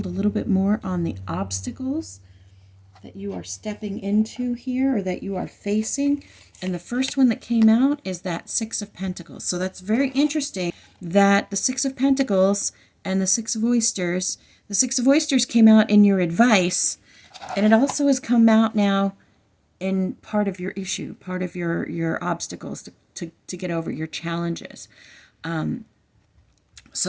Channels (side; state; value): both; identical; correlation 1.00